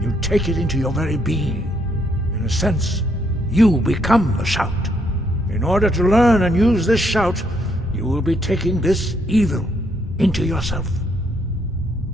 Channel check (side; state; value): both; normal; correlation 0.73